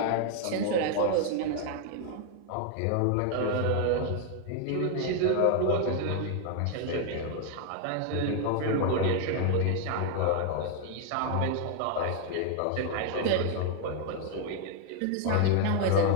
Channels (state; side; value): different; both; correlation 0.00